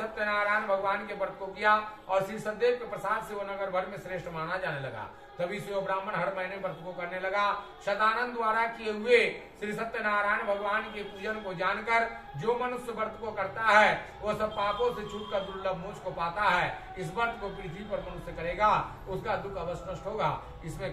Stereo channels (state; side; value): identical; both; correlation 1.00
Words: भगवान के व्रत को किया और श्री सदैव के प्रसाद से वो नगर भर में श्रेष्ठ माना जाने लगा। तभी से वो ब्राह्मण हर महीने व्रत को करने लगा। शतानंद द्वारा किए हुए श्री सत्यनारायण भगवान के पूजन को जानकर जो मनुष्य व्रत को करता है वो सब पापों से छूटकर दुर्लभ मोक्ष को पाता है। इस व्रत को पृथ्वी पर मनुष्य करेगा उसका दुख अवश्य नष्ट होगा, इसमें